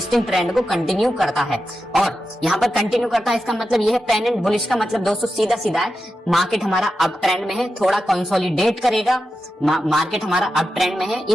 ट्रेंड को कंटिन्यू करता है, और यहाँ पर कंटिन्यू करता है इसका मतलब ये है। पेन एंड बुलिश का मतलब दोस्तों सीधा सीधा है, मार्केट हमारा अप ट्रेंड में है, थोड़ा कंसोलिडेट करेगा, मार्केट हमारा अप ट्रेंड में है,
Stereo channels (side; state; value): both; normal; correlation 0.90